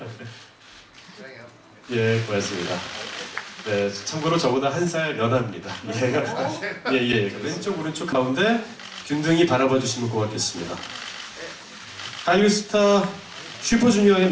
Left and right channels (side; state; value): both; identical; correlation 1.00